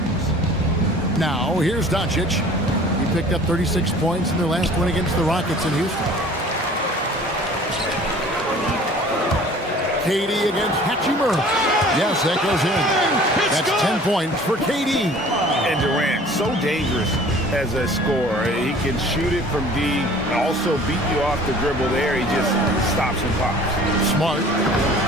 Now, here's Doncic. He picked up 36 points in their last win against the Rockets in Houston. KD against Hachimura. Yes, that goes in. That's 10 points for KD. And Durant, so dangerous as a scorer. He can shoot it from deep, also beat you off the dribble there. He just stops and pops. Smart.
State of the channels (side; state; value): both; normal; correlation 0.48